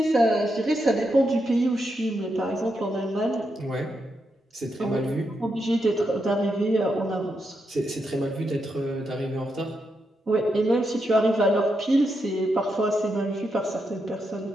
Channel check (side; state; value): both; normal; correlation 0.83